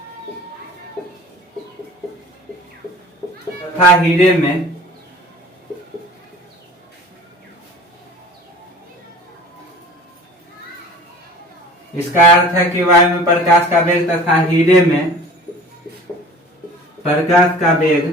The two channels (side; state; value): both; normal; correlation 0.43